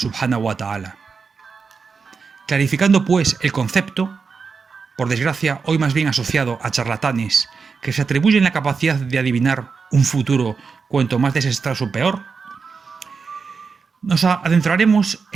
wa ta'ala. Clarificando pues el concepto, por desgracia hoy más bien asociado a charlatanes que se atribuyen la capacidad de adivinar un futuro cuanto más desastroso peor, nos adentraremos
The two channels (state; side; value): quieter; left; 5.2 dB